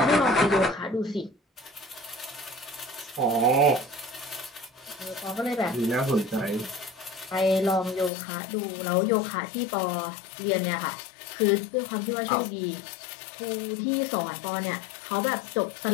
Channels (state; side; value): drops out; right; at 8.1 s